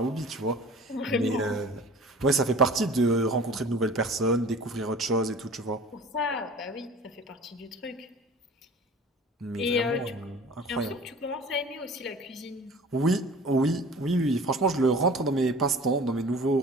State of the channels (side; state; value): both; normal; correlation 0.43